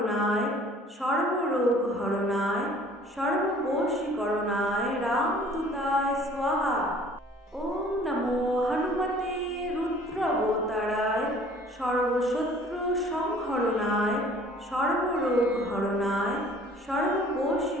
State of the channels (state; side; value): normal; both; correlation 0.52